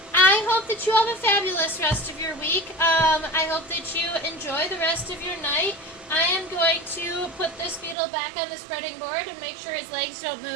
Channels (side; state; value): left; drops out; at 8.0 s